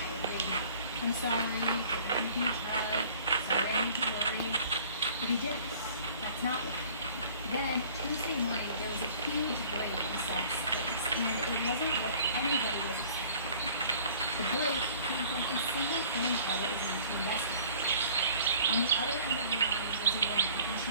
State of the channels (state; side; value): inverted; both; correlation -0.51